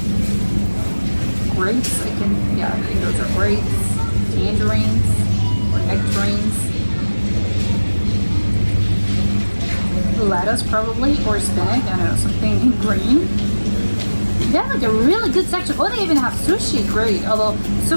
grapes. I think those are grapes, tangerines, or nectarines. Lettuce probably, or spinach, I don't know, something green. They have like a really good section. Oh, they even have sushi, great. Although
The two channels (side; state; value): both; inverted; correlation -1.00